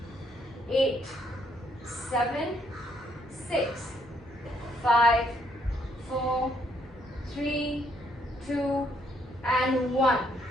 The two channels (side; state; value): both; normal; correlation 0.71